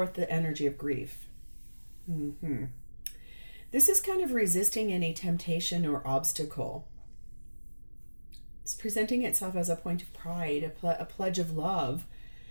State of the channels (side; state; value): both; inverted; correlation -1.00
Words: the energy of grief. This is kind of resisting any temptation or obstacle. It's presenting itself as a point of pride, a pledge of love.